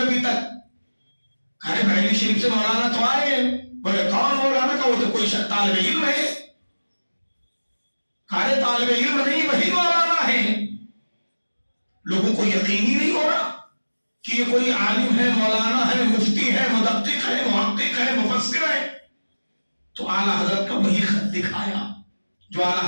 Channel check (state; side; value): inverted; both; correlation -1.00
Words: ابھی تک. ارے بریلی شریف سے مولانا تو آئے ہیں. بولے کون مولانا؟ کا وہ تو کوئی طالب علم ہے. ارے طالب علم نہیں, وہی مولانا ہے. لوگوں کو یقین ہی نہیں ہو رہا کہ یہ کوئی عالم ہے, مولانا ہے, مفتی ہے, مدقق ہے, محقق ہے, مفسر ہے. تو اعلیٰ حضرت کا وہی خط دکھایا جو